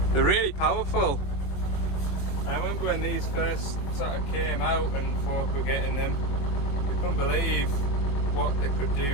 They're really powerful. I remember when these first sort of came out and folk were getting them, they couldn't believe what they could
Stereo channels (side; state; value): right; late; 21 ms